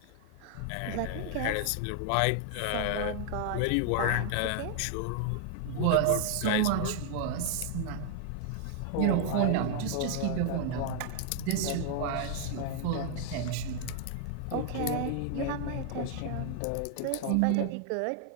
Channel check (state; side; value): different; both; correlation 0.00